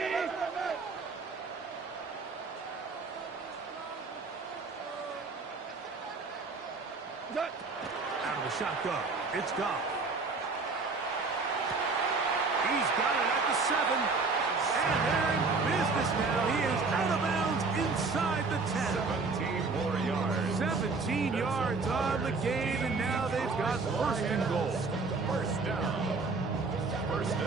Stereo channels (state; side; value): quieter; left; 4.1 dB